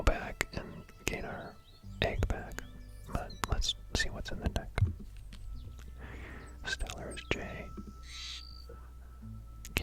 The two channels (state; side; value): identical; both; correlation 1.00